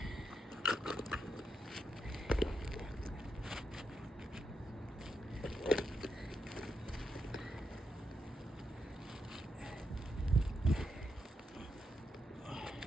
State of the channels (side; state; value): both; normal; correlation 0.83